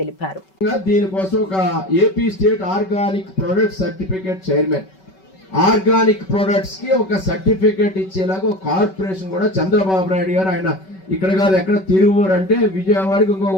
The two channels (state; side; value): late; right; 5.3 ms